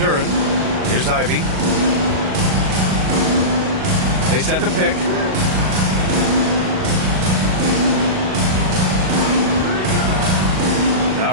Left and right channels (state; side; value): late; left; 38 ms